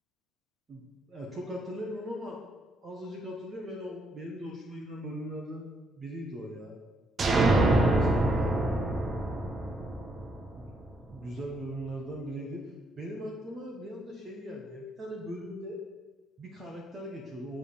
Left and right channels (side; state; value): both; normal; correlation 0.75